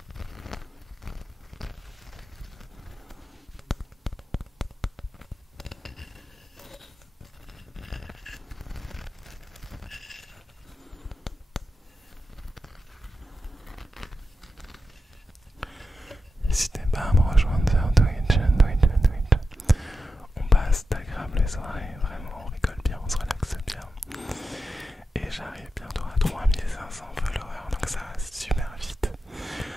N'hésitez pas à me rejoindre sur Twitch. On passe d'agréables soirées, vraiment on rigole bien, on se relaxe bien. Et j'arrive bientôt à 3500 followers, donc ça va super vite.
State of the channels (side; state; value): both; normal; correlation 0.90